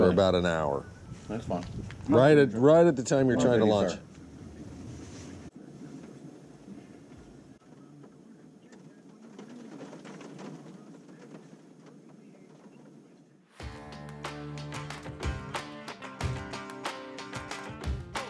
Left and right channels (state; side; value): identical; both; correlation 1.00